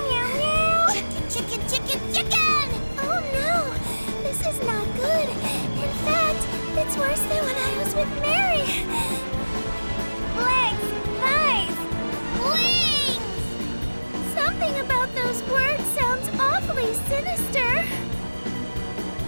meow, meow. Chicken, chicken, chicken, chicken! Oh no, this is not good. In fact, it's worse than when I was with Mary. Legs, thighs, wings! Something about those words sounds awfully sinister.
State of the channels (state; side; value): inverted; both; correlation -1.00